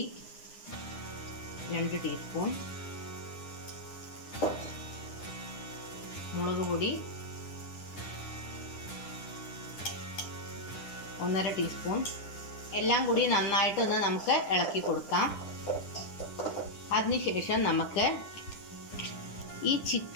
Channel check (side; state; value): right; late; 10 ms